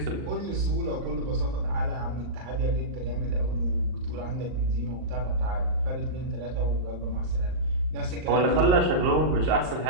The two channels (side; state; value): left; late; 38 ms